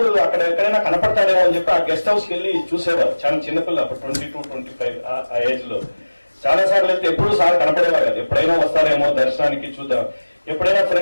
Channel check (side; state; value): both; inverted; correlation -1.00